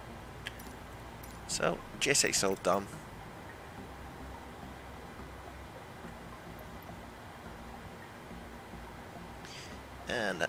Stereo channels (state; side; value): identical; both; correlation 1.00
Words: So, GSX all done. And